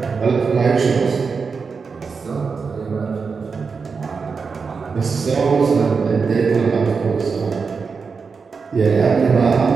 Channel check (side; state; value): left; quieter; 5.2 dB